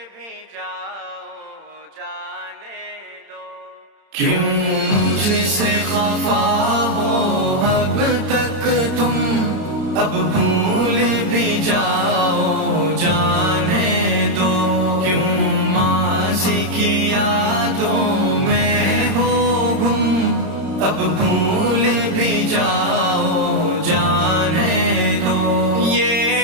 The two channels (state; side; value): late; left; 31 ms